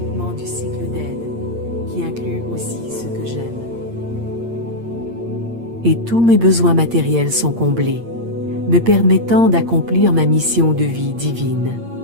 du cycle d'aide, qui inclut aussi ceux que j'aime. Et tous mes besoins matériels sont comblés, me permettant d'accomplir ma mission de vie divine.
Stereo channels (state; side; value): late; left; 8.7 ms